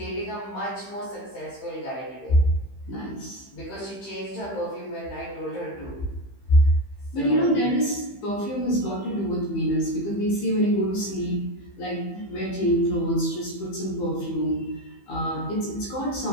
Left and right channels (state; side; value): late; right; 15 ms